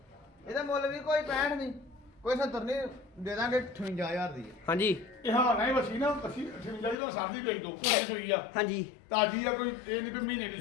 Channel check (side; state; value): right; drops out; at 7.0 s